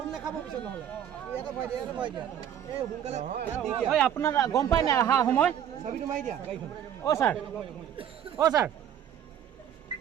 নেখাব পিছত নহলে এটা ভয় দিয়া এই হুনকালে ঐ আপোনাৰ গম পায় না আহা সময় চাবিটো মাৰি দিয়া ও স্যার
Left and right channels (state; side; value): quieter; left; 9.8 dB